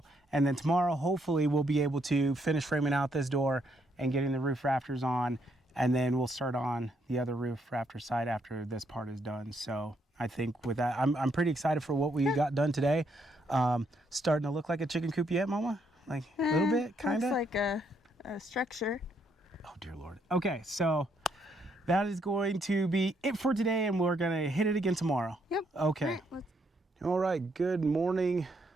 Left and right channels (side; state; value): both; normal; correlation 0.74